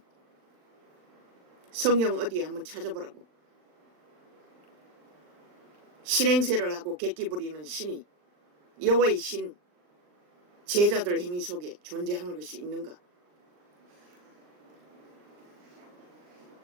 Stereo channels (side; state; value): left; late; 39 ms